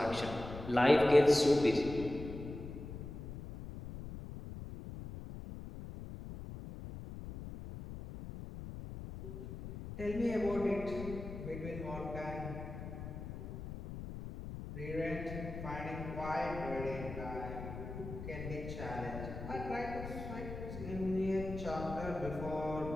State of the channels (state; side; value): noise; left; rumble, 9 dB below the sound